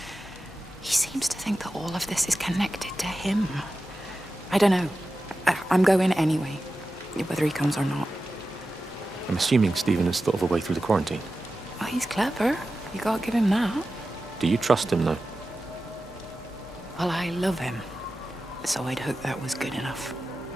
He seems to think that all of this is connected to him. I don't know. I'm going anyway, whether he comes or not. I'm assuming Stephen has thought of a way through the quarantine. Oh, he's clever. You gotta give him that. Do you trust him, though? Well, I love him. So I'd hope that was good enough.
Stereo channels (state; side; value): normal; both; correlation 0.93